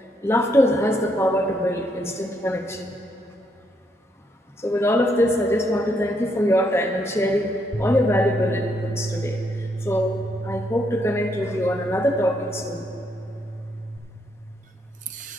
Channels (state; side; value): normal; both; correlation 0.75